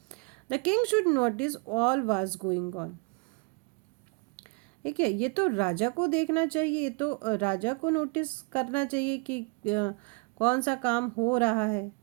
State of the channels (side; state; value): left; quieter; 33.2 dB